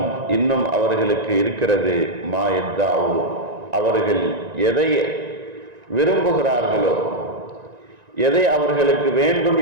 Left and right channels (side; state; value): left; late; 1.9 ms